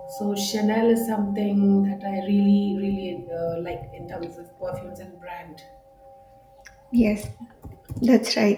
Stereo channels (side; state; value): both; identical; correlation 1.00